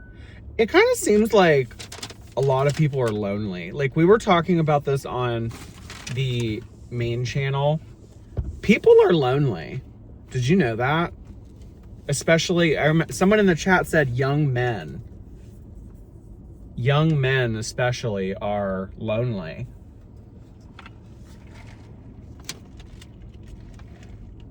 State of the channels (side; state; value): both; identical; correlation 1.00